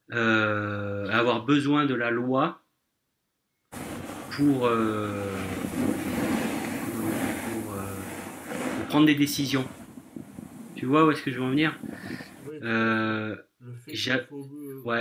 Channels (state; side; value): identical; both; correlation 1.00